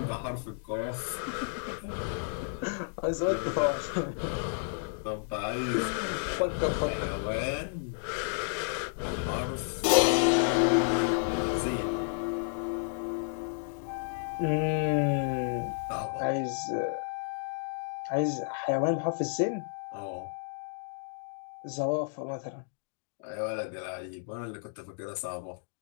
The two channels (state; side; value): silent; right; digital silence